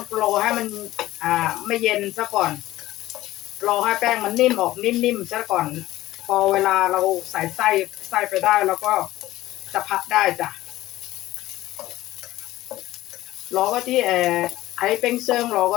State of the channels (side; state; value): right; quieter; 16.1 dB